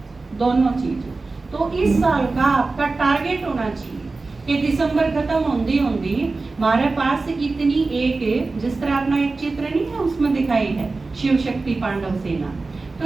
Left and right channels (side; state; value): left; quieter; 3.7 dB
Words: दोनों चीजें। तो इस साल का आपका टारगेट होना चाहिए कि दिसंबर खत्म होंदी होंदी हमारे पास इतनी एक, जिस तरह अपना एक चित्र नहीं है उसमें दिखाई है शिव शक्ति पांडव सेना,